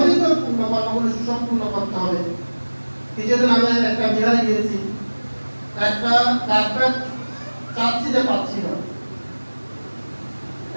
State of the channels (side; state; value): both; inverted; correlation -1.00